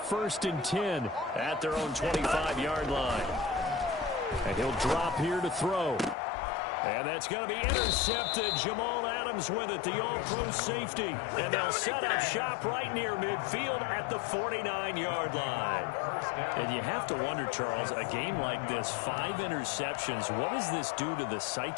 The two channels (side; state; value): right; drops out; at 6.2 s